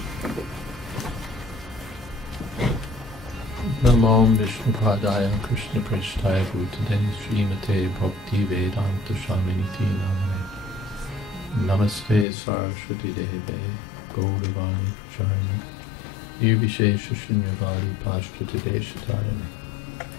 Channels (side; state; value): right; drops out; at 12.2 s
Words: Namo Vishnupadaya Krishna Prishtaya Bhutale Srimate Bhaktivedanta Swami Namane Namaste Saraswati Deve Gauravani Pracharine Nirvishesha Shunyavadi Pashtati Deshatarane.